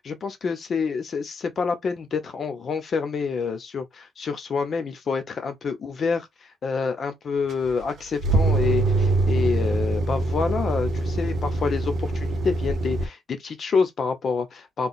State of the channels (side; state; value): both; normal; correlation 0.76